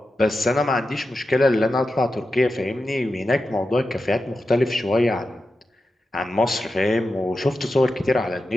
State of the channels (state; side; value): normal; both; correlation 0.90